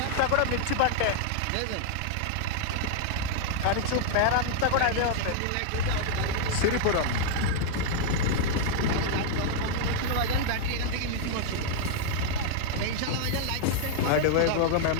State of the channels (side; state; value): both; different; correlation -0.01